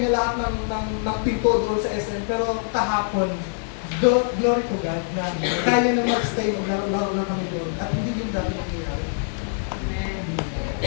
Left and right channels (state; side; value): silent; right; digital silence